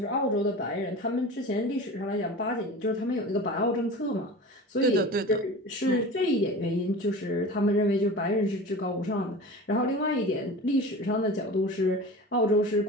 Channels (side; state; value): both; normal; correlation 0.35